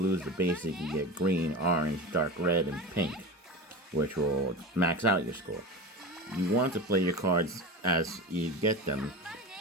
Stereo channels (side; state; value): both; normal; correlation 0.28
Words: is the basic. You get green, orange, dark red, and pink, which will max out your score. You want to play your cards as you get them.